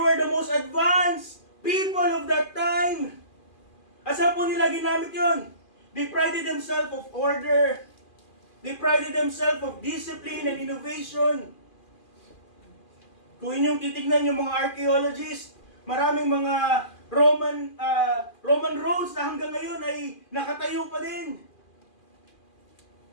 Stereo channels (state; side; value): late; right; 2.4 ms